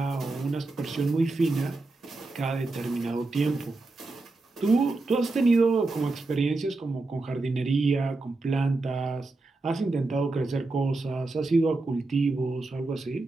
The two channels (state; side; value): quieter; left; 3.3 dB